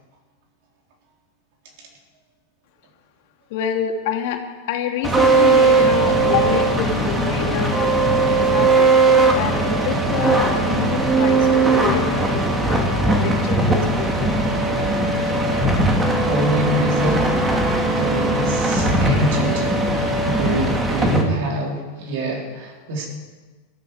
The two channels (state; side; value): normal; both; correlation 0.30